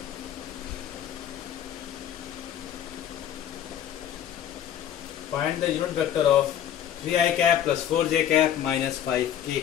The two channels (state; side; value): quieter; right; 10.3 dB